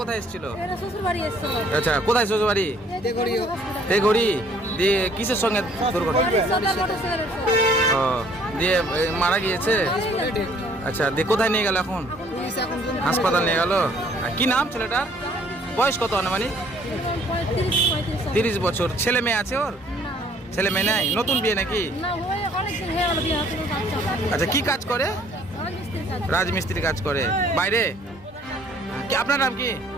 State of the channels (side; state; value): both; normal; correlation 0.59